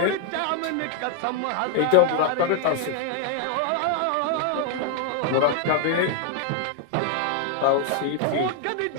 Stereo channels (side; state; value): both; different; correlation 0.00